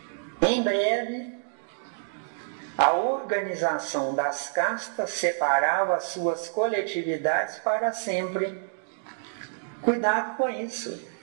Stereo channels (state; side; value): silent; left; digital silence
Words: Em breve, a organização das castas separava as suas coletividades para sempre. Cuidado com isso.